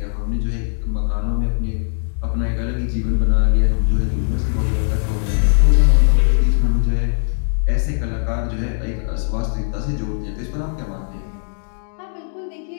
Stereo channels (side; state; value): right; silent; 64 dB below the other